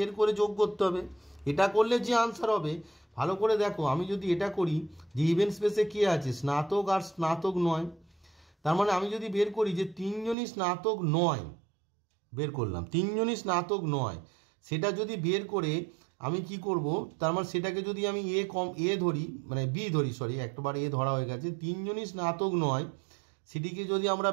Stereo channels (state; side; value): drops out; left; at 10.4 s